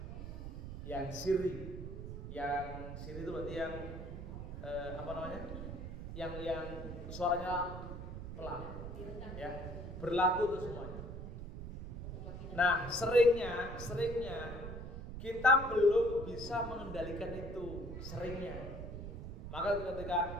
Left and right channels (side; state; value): right; noise; rumble, 8 dB below the sound